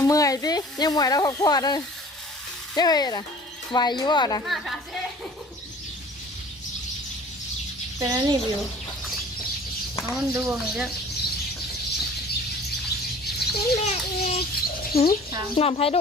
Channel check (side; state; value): both; normal; correlation 0.47